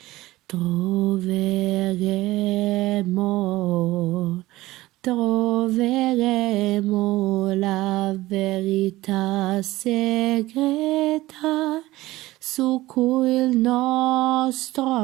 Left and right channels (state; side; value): quieter; left; 17.9 dB